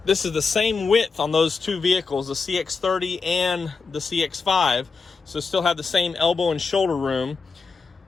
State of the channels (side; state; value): right; quieter; 4.8 dB